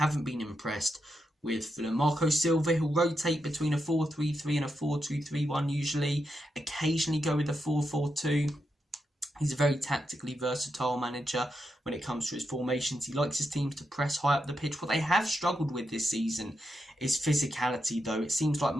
been impressed with Fulham. Marco Silva, he'll rotate between a 4-3-3 and a 4-2-3-1 usually. Occasionally go with a 4-4-2. He's a very tactically versatile manager when it comes to his formations. He likes his teams to press high up the pitch. What they have struggled with this season is physicality, though. It seems like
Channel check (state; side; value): normal; both; correlation 0.85